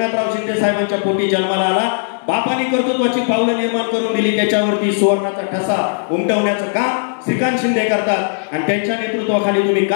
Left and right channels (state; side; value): silent; right; digital silence